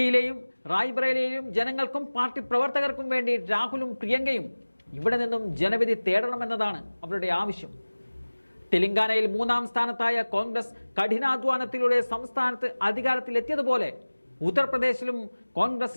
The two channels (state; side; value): inverted; both; correlation -1.00